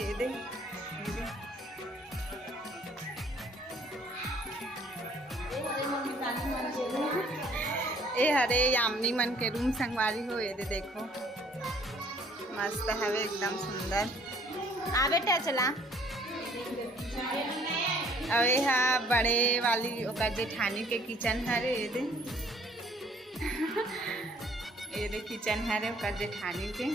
दे ये हरे यामिनी मन के रूम संगवारी हो ये दे देखो मस्त हवे एकदम सुंदर आ बेटा चला। और ये बड़े वाली ओकर जेठानी के किचन हरे ये दे किचन हरे ओकर जेठानी के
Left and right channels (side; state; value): both; normal; correlation 0.59